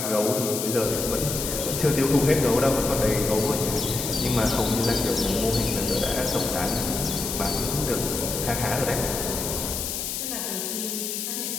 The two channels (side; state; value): left; noise; hiss, 3 dB below the sound